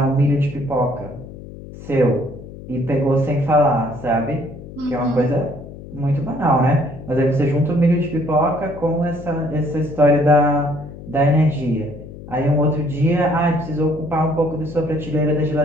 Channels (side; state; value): left; noise; hum, 14 dB below the sound